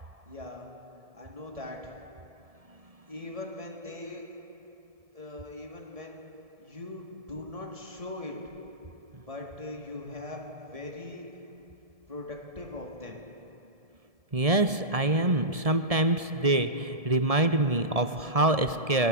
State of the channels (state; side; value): late; left; 1.7 ms